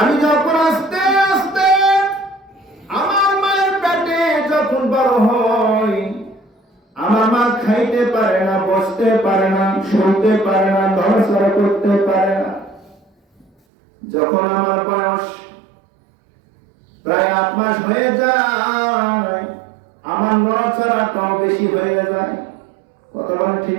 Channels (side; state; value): left; drops out; at 13.5 s